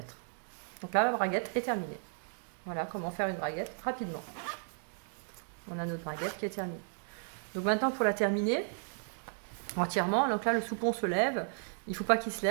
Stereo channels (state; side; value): silent; left; 55 dB below the other